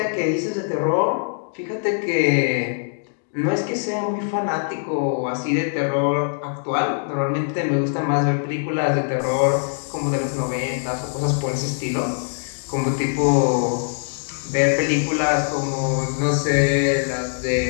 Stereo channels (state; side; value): silent; right; digital silence